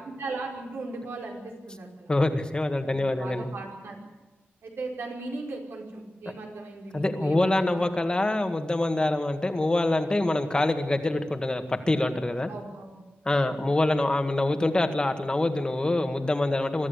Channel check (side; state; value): both; normal; correlation 0.95